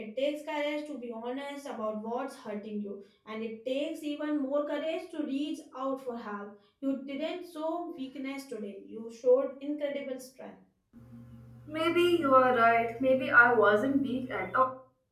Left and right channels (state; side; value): identical; both; correlation 1.00